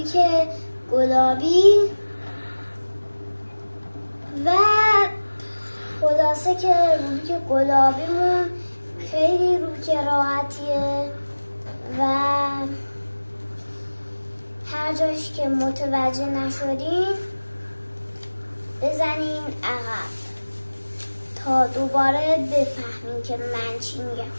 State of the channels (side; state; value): both; inverted; correlation -1.00